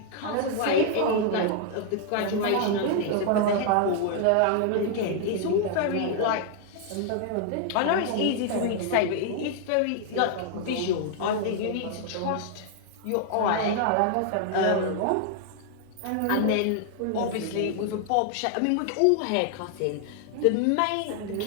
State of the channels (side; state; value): both; different; correlation 0.00